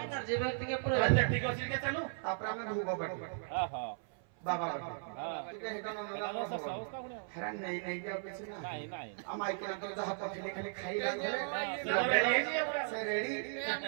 एनर्जी व्यक्ति के पूरा ठीक अछि के चलू तापर हमें भूगो बाटी हां बाबा बाटी ठीक है हेडा न अवस्था गुण हेरा नहीं नहीं के पीछे ना नहीं नहीं अमाई के तो जहां पखली खाली खाई लागे से रेडी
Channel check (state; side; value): silent; left; 53 dB below the other